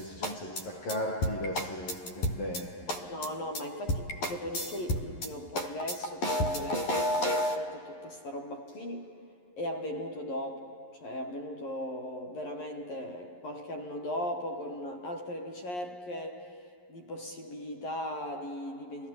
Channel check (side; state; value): right; late; 11 ms